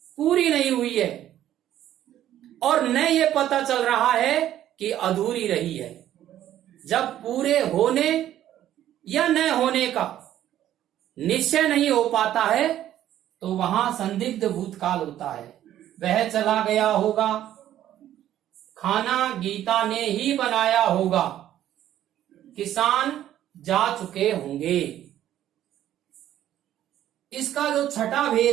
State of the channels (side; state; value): left; quieter; 12.0 dB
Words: पूरी नहीं हुई है और न ये पता चल रहा है कि अधूरी रही है। जब पूरे होने या न होने का निश्चय नहीं हो पाता है तो वहां संदिग्ध भूतकाल होता है। वह चला गया होगा, खाना गीता ने ही बनाया होगा, किसान जा चुके होंगे। इसका जो छठा